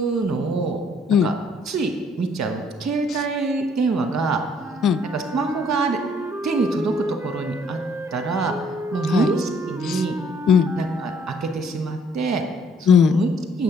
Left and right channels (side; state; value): both; normal; correlation 0.63